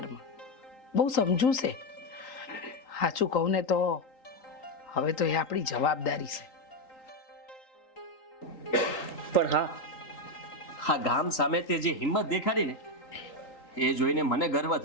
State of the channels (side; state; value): right; late; 3.8 ms